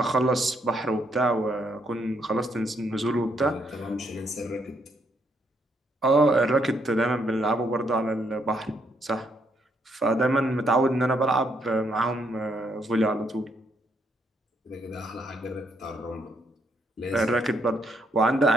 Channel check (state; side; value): normal; both; correlation 0.74